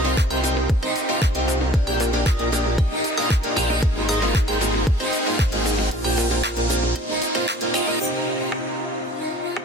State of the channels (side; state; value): both; normal; correlation 0.50